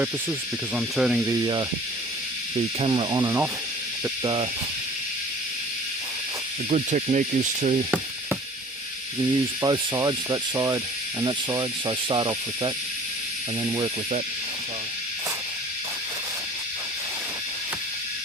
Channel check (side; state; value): both; normal; correlation 0.47